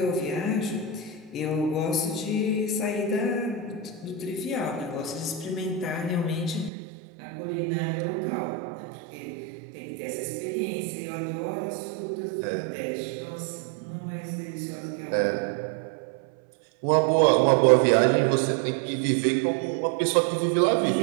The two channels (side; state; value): left; drops out; at 6.7 s